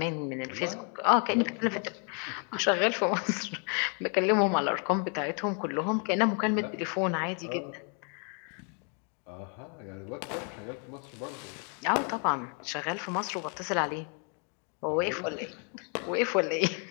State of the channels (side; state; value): right; quieter; 39.5 dB